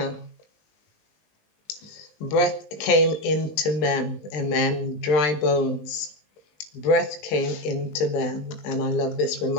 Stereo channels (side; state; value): right; late; 19 ms